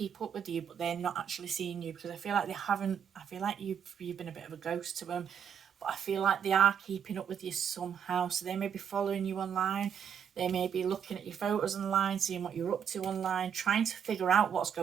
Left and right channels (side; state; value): left; quieter; 8.1 dB